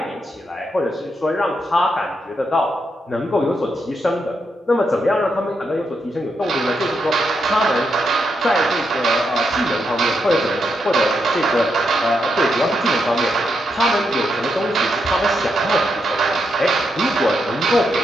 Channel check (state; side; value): normal; both; correlation 0.82